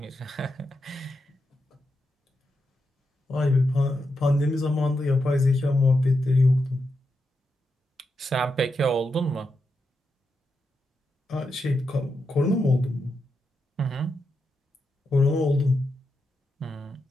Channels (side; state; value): both; normal; correlation 0.86